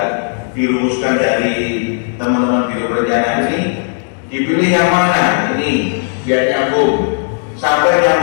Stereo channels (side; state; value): right; silent; 64 dB below the other